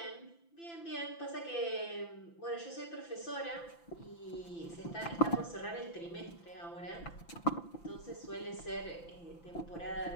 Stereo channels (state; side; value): late; right; 5.9 ms